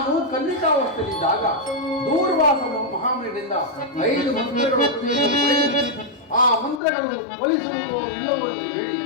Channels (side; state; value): right; drops out; at 6.8 s